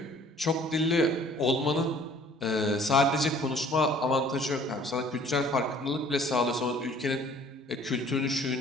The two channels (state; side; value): normal; both; correlation 0.54